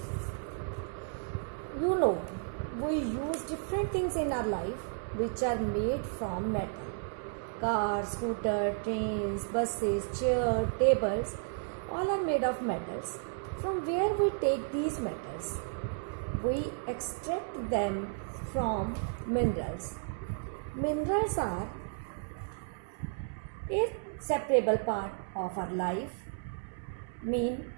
You know, we use different things in our life which are made from metal. Cars, scooter, trains, buses, chairs, tables, all are made of metals. From where we take these metals? We extract them from minerals. Minerals are a separable part of our life, mean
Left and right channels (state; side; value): silent; left; 56 dB below the other